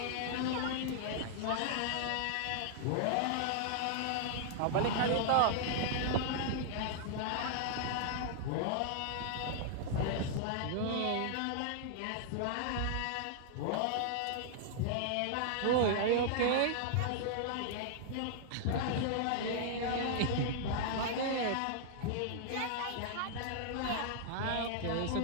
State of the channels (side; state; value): both; different; correlation -0.01